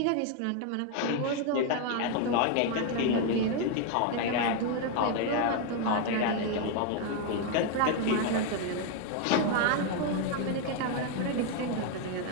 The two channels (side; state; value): both; different; correlation 0.01